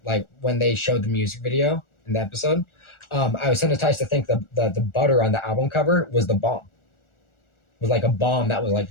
like when they showed the music video in the episode. I was hypnotized to think the butter on the album cover was the bomb. It was like a bomb that was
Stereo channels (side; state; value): right; late; 1.4 ms